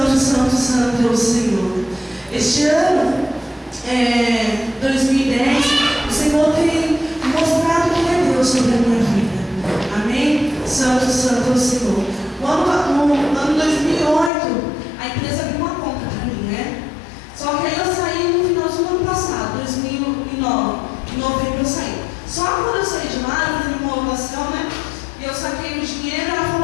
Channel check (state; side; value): drops out; right; at 14.3 s